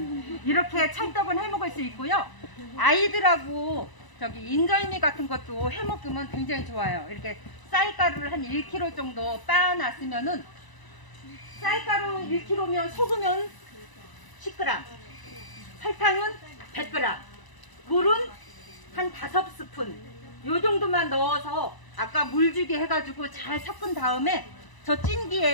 이렇게 찰떡은 해먹을 수 있고요. 아이들하고 저기 인절미 같은 것도 해먹으면 굉장히 좋아요. 이렇게 쌀가루를 한 1kg 정도 빻아놨으면은 쌀가루 1kg면 소금은 10g, 설탕은 100g, 물은 한 5스푼 요 정도만 넣어서 아까 물주기 해가지고 잘 섞은 다음에 저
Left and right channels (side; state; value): right; late; 1.0 ms